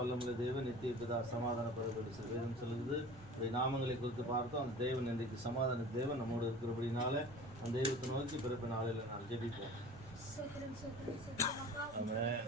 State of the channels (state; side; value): noise; right; rumble, 18 dB below the sound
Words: தேவன், நித்திய பிதா, சமாதான பிரபு வேதம் சொல்லுது. அவருடைய நாமங்களை குறித்து பார்த்தோம். அந்த தேவன் இன்றைக்கு சமாதான தேவன் நம்மோடு இருக்கிறபடினால அந்த தெய்வத்தை நோக்கி பிறப்பு நாளில் நான் ஜெபிப்போம்.